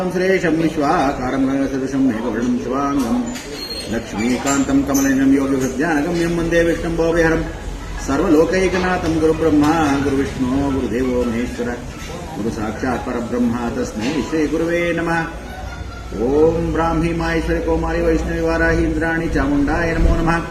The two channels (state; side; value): identical; both; correlation 1.00